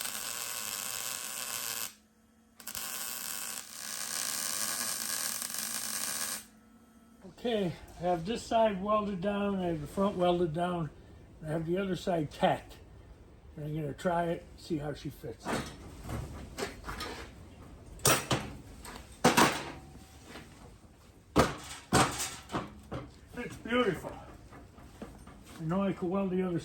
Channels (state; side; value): identical; both; correlation 1.00